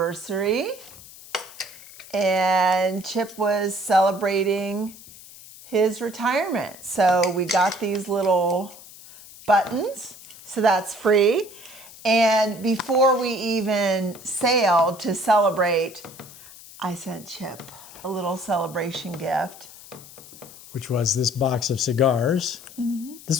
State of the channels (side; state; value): left; noise; hiss, 19 dB below the sound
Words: and Chip was celebrating his retirement. So we got these little buttons, so that's free. And before we even sailed to celebrate, I sent Chip a little celebration gift. Which was this box of cigars. Mm-hmm.